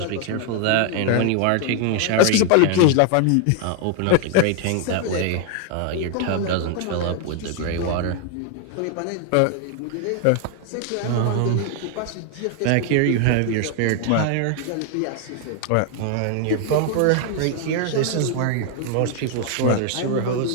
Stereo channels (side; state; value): both; different; correlation 0.00